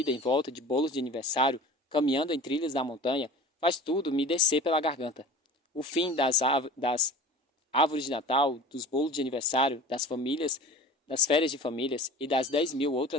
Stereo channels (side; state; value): both; normal; correlation 0.39